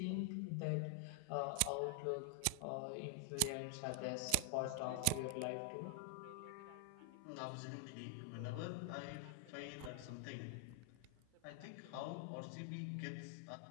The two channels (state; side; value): different; both; correlation 0.00